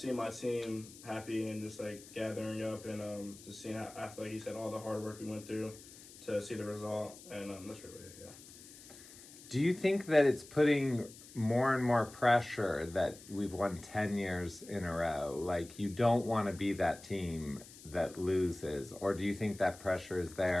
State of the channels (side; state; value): left; noise; hiss, 18 dB below the sound